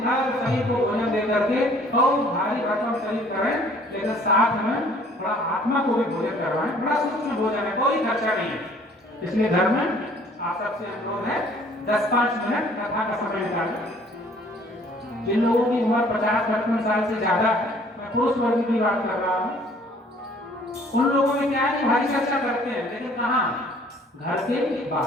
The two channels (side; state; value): both; normal; correlation 0.56